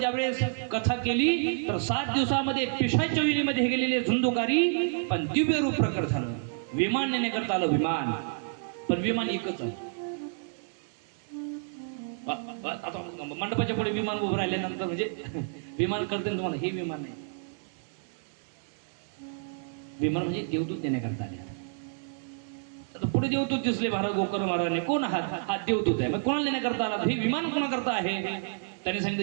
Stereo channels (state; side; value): silent; left; digital silence